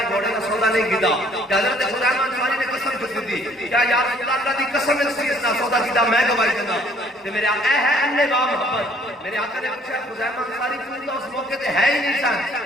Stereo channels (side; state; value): both; normal; correlation 0.60